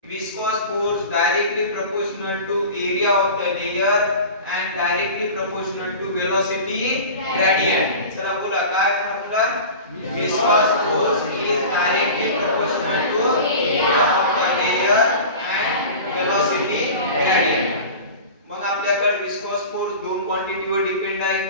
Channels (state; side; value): inverted; both; correlation -0.35